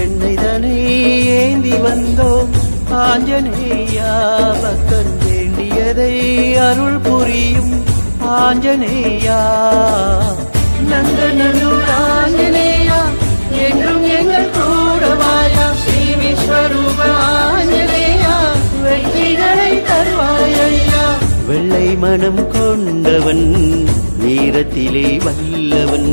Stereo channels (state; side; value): inverted; both; correlation -1.00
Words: ஏந்தி வந்தோம் ஆஞ்சநேயா பக்தன் வேண்டியதை அருள் புரியும் ஆஞ்சநேயா நந்தனூர் ஆஞ்சநேயா என்றும் எங்கள் கூடவாயா ஸ்ரீ விஸ்வரூப ஆஞ்சநேயா வெற்றிகளை தருவாயா வெள்ளை மனம் கொண்டவன் வீரத்திலே வல்லவன்